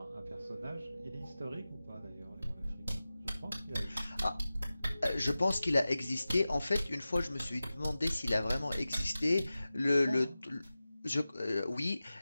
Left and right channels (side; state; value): both; inverted; correlation -0.96